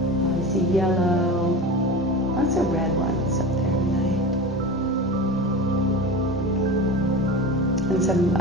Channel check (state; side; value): normal; both; correlation 0.30